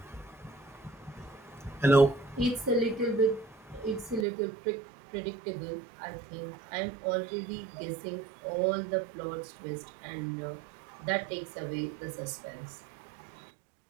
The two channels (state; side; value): drops out; left; at 4.2 s